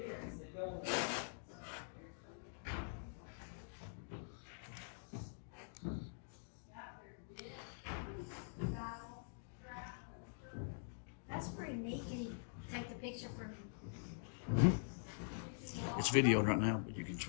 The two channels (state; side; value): silent; right; digital silence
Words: That's pretty neat. Can you take the picture from? It's videoed right now, but you can